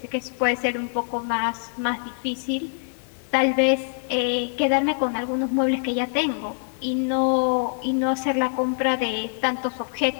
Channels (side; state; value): right; silent; digital silence